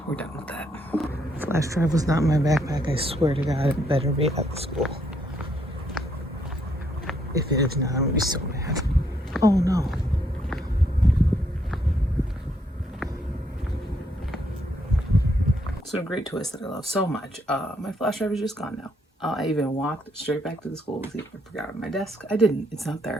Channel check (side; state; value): both; normal; correlation 0.73